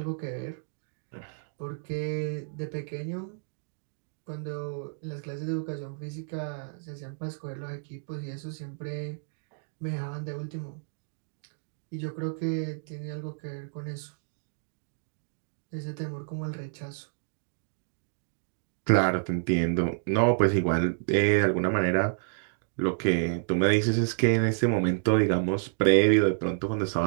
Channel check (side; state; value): left; silent; digital silence